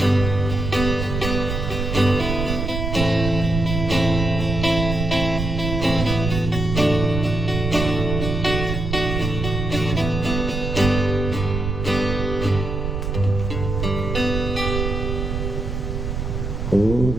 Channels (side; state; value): right; noise; rumble, 3 dB below the sound